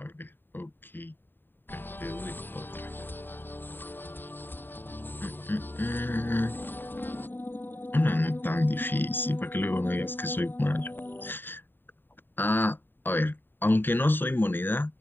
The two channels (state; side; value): late; right; 0.095 ms